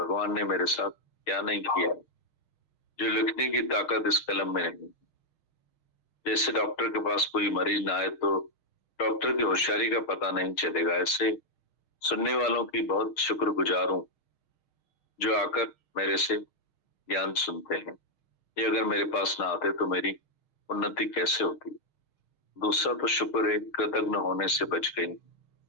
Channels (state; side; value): late; right; 6.4 ms